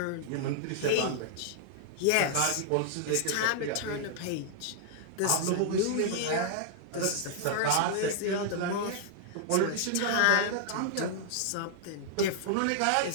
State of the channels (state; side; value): different; both; correlation -0.01